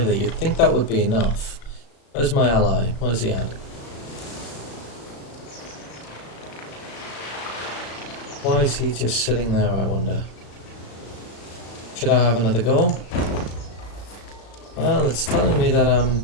you'd think that would be enough. Where's my ally? Where's he at? Why is he just sitting there, I wonder? Should I have another go? Well, it's telling me that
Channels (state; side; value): late; right; 35 ms